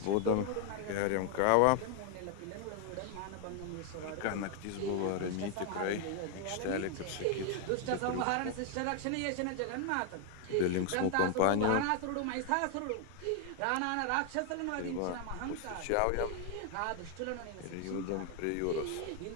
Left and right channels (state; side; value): different; both; correlation 0.01